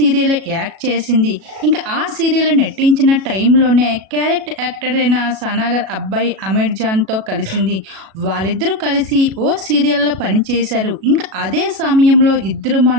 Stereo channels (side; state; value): left; late; 37 ms